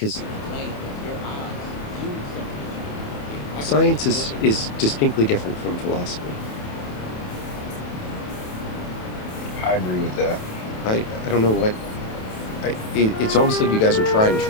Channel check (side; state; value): right; late; 28 ms